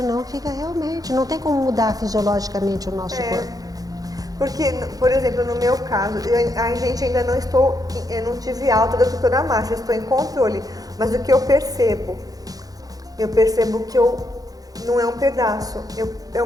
fica realmente, não tem como mudar fisiologicamente o nosso corpo. Porque, por exemplo, no meu caso, a gente ainda eu não tive alta da doutora Márcia, estou em controle, mas o que eu percebo que não é um pedaço, é um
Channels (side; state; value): left; late; 0.18 ms